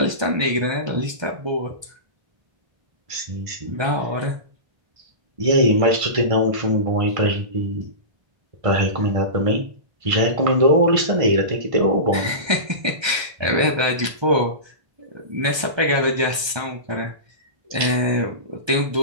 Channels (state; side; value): late; left; 1.3 ms